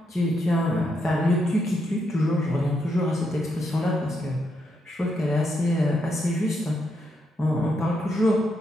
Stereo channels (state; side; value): normal; both; correlation 0.80